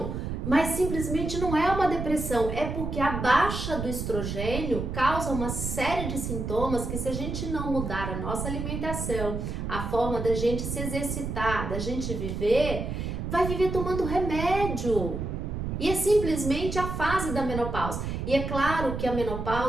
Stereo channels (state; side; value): noise; right; rumble, 4 dB below the sound